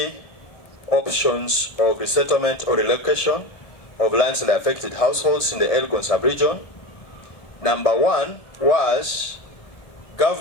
options of resettlement or relocation of landslide affected households in the Elgon sub-region. Number 1 was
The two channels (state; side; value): late; right; 1.6 ms